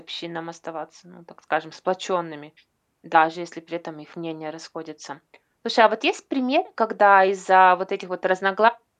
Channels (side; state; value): both; identical; correlation 1.00